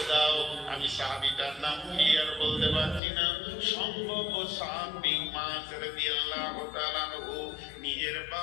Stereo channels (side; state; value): right; drops out; at 3.0 s